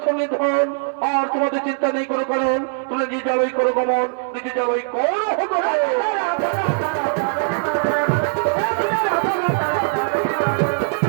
নিধন আর তোমাদের চিন্তা নেই কোনো কারণ তোমরা নিজে যাবই করো গমন নিজে যাবই করো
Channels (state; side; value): silent; left; 65 dB below the other